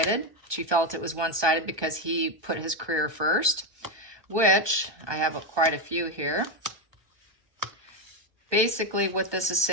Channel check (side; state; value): left; late; 1.2 ms